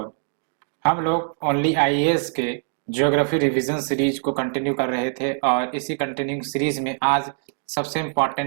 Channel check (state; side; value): silent; left; digital silence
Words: हम लोग ओनली आईएएस के ज्योग्राफी रिवीजन सीरीज को कंटिन्यू कर रहे थे और इसी कंटिन्यू सीरीज में आज सबसे